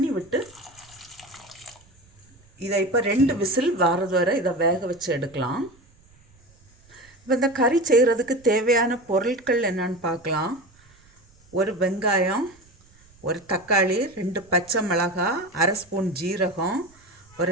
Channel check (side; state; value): right; noise; rumble, 29 dB below the sound